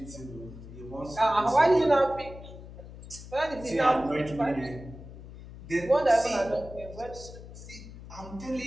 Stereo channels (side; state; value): left; noise; hum, 15 dB below the sound